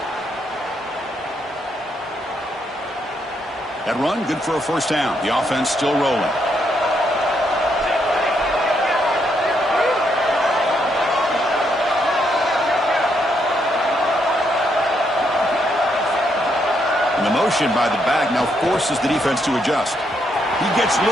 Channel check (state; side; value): normal; both; correlation 0.76